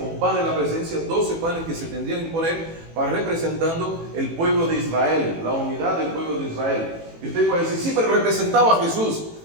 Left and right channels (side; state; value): left; late; 18 ms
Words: pan de la presencia, 12 panes que se tendrían que poner para representando el pueblo de Israel, la unidad del pueblo de Israel. Y usted puede decir, sí, pero representaba a Jesús.